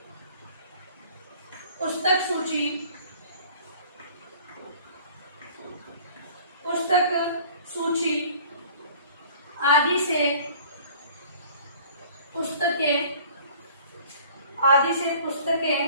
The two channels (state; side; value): inverted; both; correlation -0.50